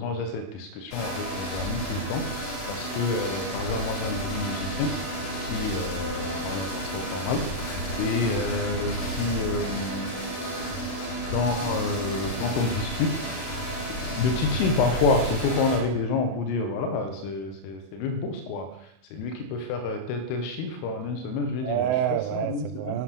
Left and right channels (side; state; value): right; late; 31 ms